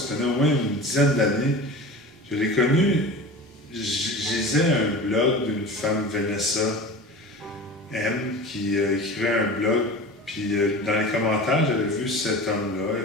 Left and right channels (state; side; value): normal; both; correlation 0.34